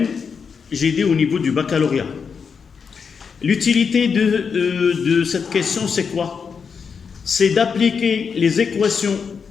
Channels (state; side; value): quieter; right; 6.0 dB